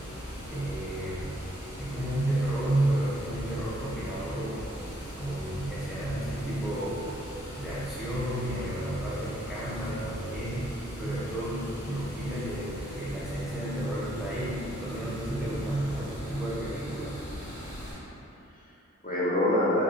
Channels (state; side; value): normal; both; correlation 0.63